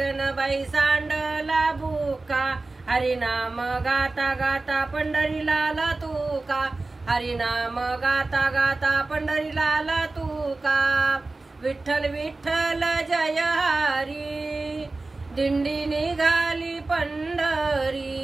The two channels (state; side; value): quieter; left; 3.3 dB